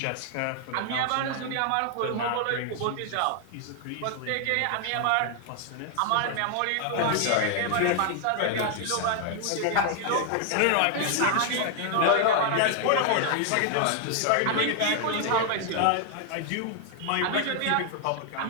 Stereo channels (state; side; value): different; both; correlation 0.00